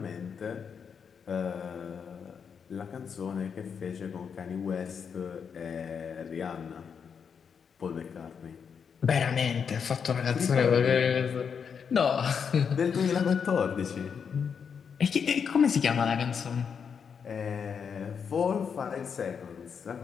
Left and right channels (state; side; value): quieter; right; 6.7 dB